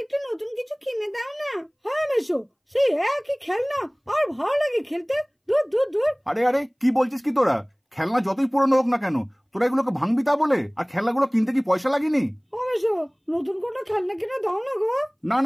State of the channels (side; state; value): both; identical; correlation 1.00